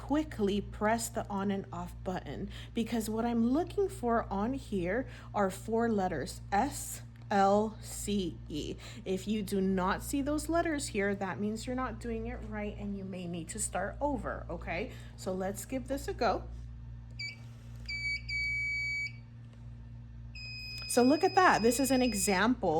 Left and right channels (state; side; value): identical; both; correlation 1.00